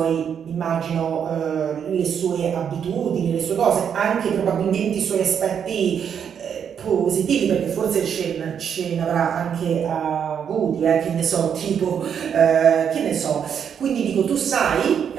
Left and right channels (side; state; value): left; quieter; 7.9 dB